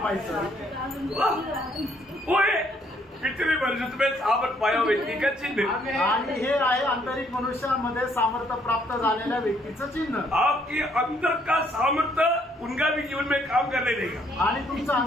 पाहिजे। भीतरी मनुष्य में सामर्थ्य पाया व्यक्ति का चिन्ह। आणि हे आहे आंतरिक मनुष्यामध्ये सामर्थ्य प्राप्त झालेल्या व्यक्तीचं चिन्ह। आपके अंदर का सामर्थ्य उनका भी जीवन में काम करने देगा। आणि तुमचं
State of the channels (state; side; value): normal; both; correlation 0.67